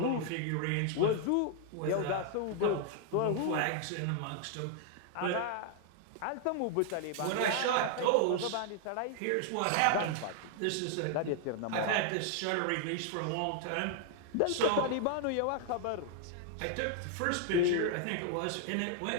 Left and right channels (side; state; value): both; different; correlation 0.00